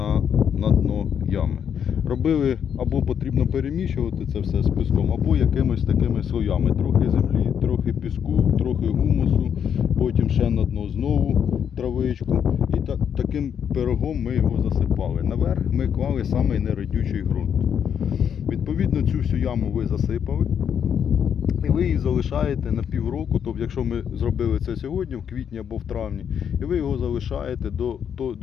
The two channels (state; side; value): quieter; right; 8.2 dB